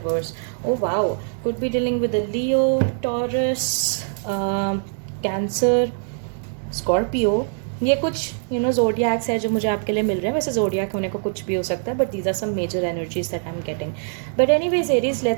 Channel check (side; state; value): left; silent; digital silence